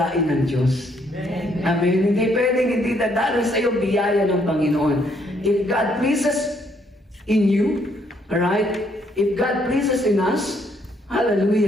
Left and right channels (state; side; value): normal; both; correlation 0.70